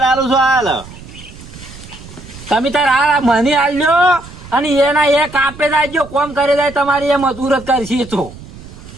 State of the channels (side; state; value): right; noise; rumble, 17 dB below the sound